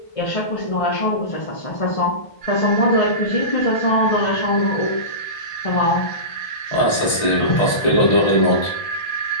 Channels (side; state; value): right; late; 1.7 ms